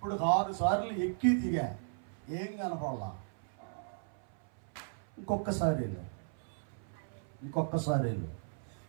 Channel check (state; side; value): silent; left; 54 dB below the other